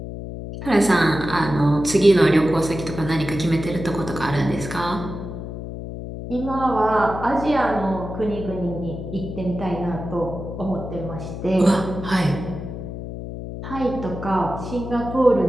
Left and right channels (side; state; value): left; noise; hum, 8 dB below the sound